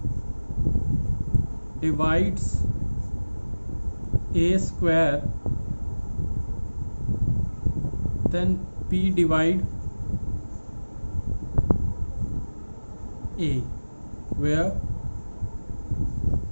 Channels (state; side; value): inverted; both; correlation -1.00